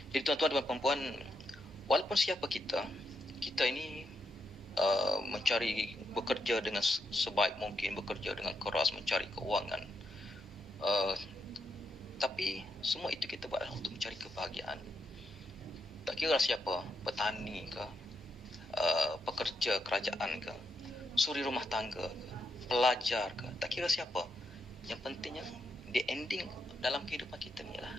Jadi tuan-tuan dan puan-puan, walaupun siapa kita ini bekerja dengan sebaik mungkin, bekerja dengan keras, mencari keuangan. Tapi semua itu kita buat untuk mencari kebahagiaan. Tak kira siapa, petani ke, pekerja kerajaan ke, suri rumah tangga ke, pelajar ke, tak kira siapa. Yang pentingnya, the ending dalam kehidupan kita ni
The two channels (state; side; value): normal; both; correlation 0.81